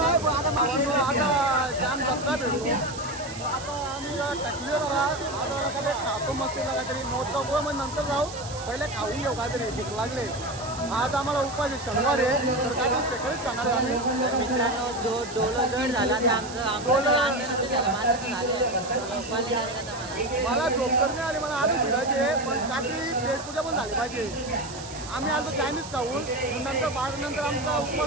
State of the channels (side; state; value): right; noise; hiss, 13 dB below the sound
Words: आता जाम जत्रा भेटू. आता आम्ही टाकले जरा आता काहीतरी खातो मस्त काहीतरी मोठा गोळ मग नंतर जाऊ. पहिले खाऊन घेऊ काहीतरी भूक लागले. आज आम्हाला उपास आहे शनिवार आहे तर काहीतरी सेकंडच खाणार आहे आम्ही. मित्रांनो जो डोलो जड झाला तर मला झोप करणे आली मला आधी फिरायचे पण काहीतरी पेटपूजा पण झाली पाहिजे. आम्ही आलो चायनीज खाऊन नंतर नंतर आमचा